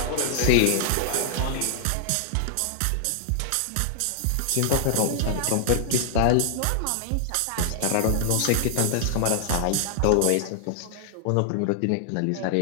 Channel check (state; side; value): different; both; correlation -0.01